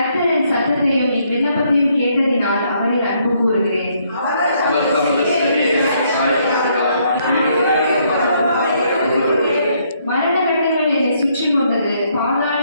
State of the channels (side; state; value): both; inverted; correlation -0.70